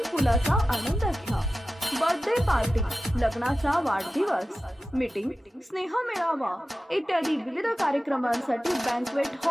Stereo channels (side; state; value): both; normal; correlation 0.94